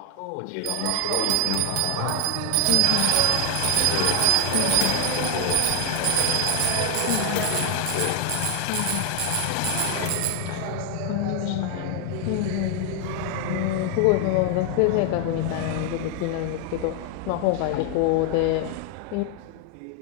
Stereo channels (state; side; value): different; both; correlation 0.00